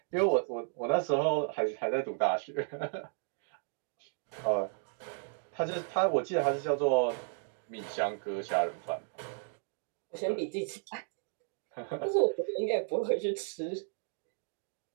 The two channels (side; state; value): left; silent; digital silence